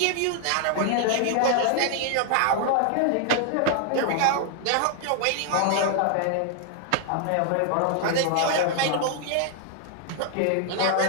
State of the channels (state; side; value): different; both; correlation 0.00